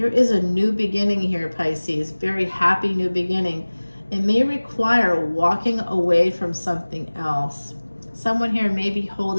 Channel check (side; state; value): both; inverted; correlation -1.00